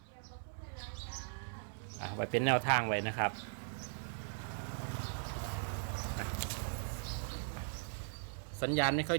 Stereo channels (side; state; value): left; silent; 52 dB below the other